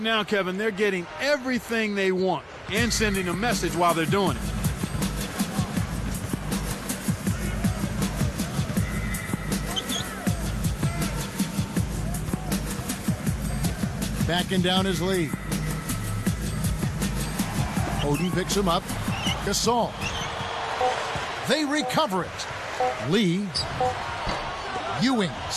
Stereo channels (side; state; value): both; identical; correlation 1.00